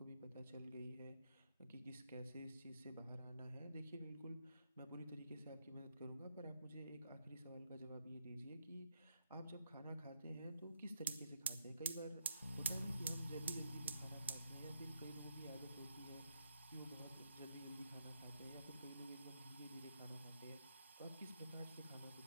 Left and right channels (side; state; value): both; inverted; correlation -0.76